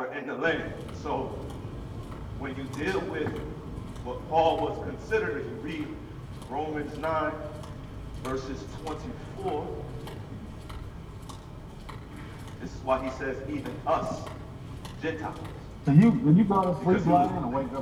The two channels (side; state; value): both; identical; correlation 1.00